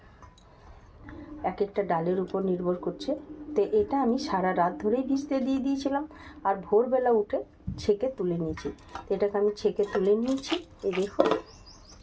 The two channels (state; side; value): identical; both; correlation 1.00